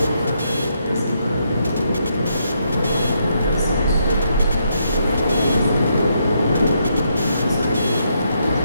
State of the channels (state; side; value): inverted; both; correlation -0.77